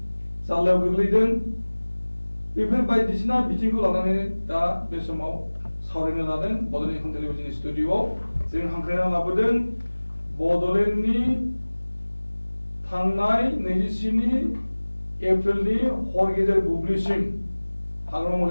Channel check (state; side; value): inverted; both; correlation -1.00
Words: जाल्लायाव गोग्लैदों बेफोर बायदिसिना बिथिंखौ लानानै दा बे समाव सावरायनो लादों बड'लेण्ड इंखं टेलिभिजननि स्टुडिअ'आव जों हांख्रायना लाबोदों बड'लेण्डनि थांनाय 27 एप्रिलनि हर गेजेर बुब्लिसिम हाग्रामा